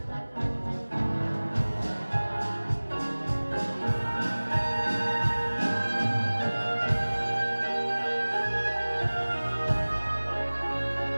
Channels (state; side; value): inverted; both; correlation -1.00